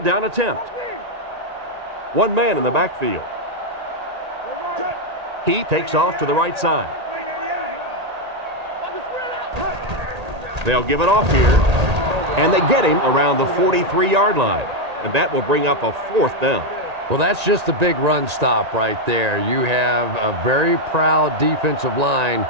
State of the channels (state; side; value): late; left; 1.8 ms